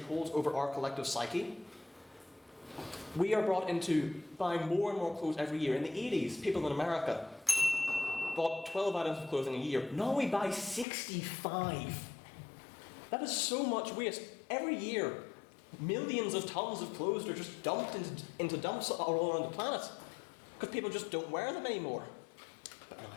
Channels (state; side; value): drops out; right; at 10.9 s